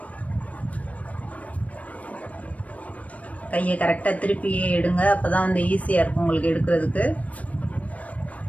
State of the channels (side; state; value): right; late; 0.067 ms